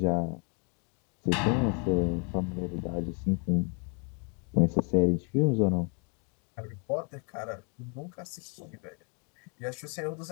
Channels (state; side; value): quieter; right; 36.0 dB